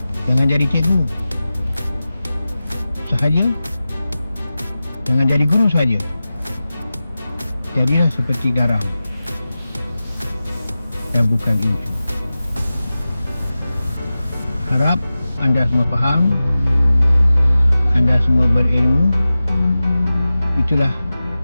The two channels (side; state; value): both; inverted; correlation -0.95